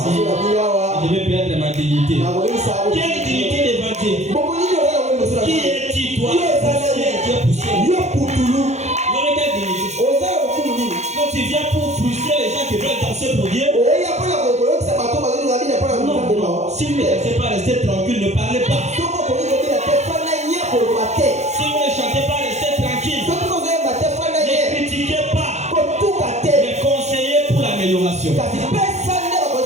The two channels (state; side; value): late; left; 0.33 ms